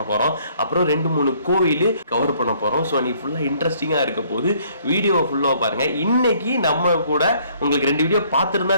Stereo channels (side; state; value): both; inverted; correlation -0.62